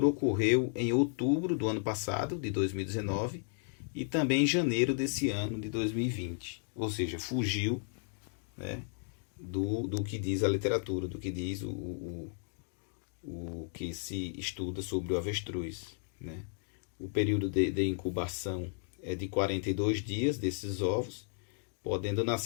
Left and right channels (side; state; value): right; silent; 55 dB below the other